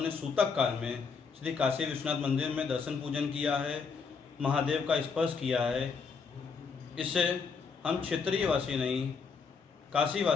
सूतक काल में श्री काशी विश्वनाथ मंदिर में दर्शन पूजन किया है, महादेव का स्पर्श किया है। इससे हम क्षेत्रीय वासी नहीं, काशी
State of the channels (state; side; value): quieter; right; 5.4 dB